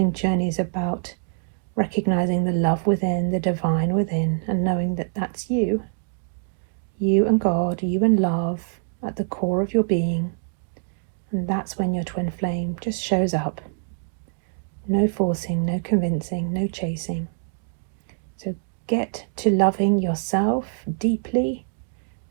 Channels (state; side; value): silent; left; digital silence